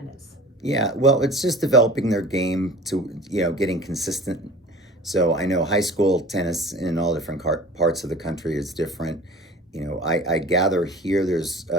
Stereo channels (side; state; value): both; normal; correlation 0.42